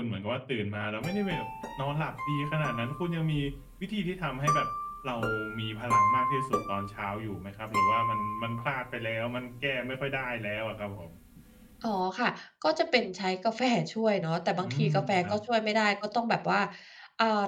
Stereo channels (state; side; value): identical; both; correlation 1.00